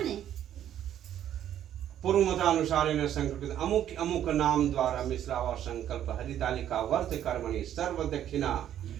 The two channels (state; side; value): quieter; left; 10.8 dB